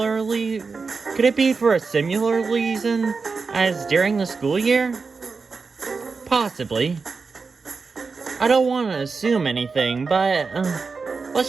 reason as during the school year? Possibly. I don't want to assume anything, but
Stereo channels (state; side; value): quieter; left; 4.6 dB